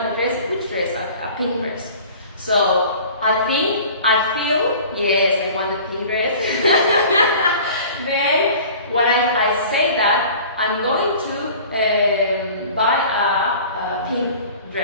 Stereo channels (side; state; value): both; inverted; correlation -0.44